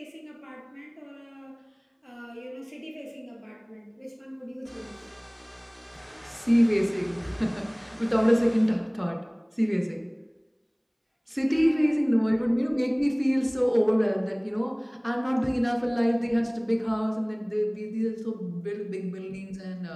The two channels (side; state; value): both; identical; correlation 1.00